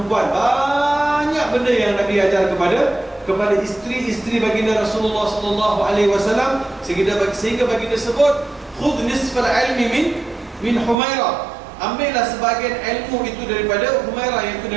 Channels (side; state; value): left; drops out; at 11.0 s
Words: Banyak benda yang Nabi ajar kepada isteri-isteri baginda Rasulullah SAW, sehingga baginda sebut khudh nisfal ilmi min Humairah. Ambillah sebahagian ilmu itu daripada Humairah, iaitu